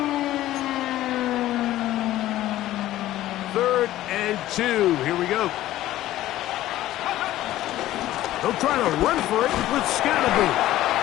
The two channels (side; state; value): right; quieter; 14.6 dB